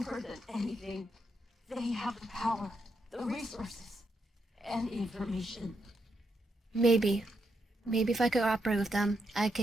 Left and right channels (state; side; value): normal; both; correlation 0.81